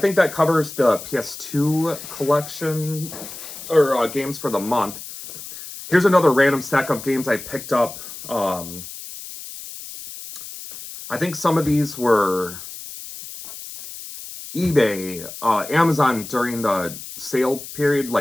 that covers the PS2 collection or games for the month. Here's another random stack of games I picked up. I think some of these were eBay, Amazon during the sale period,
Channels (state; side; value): noise; left; hiss, 12 dB below the sound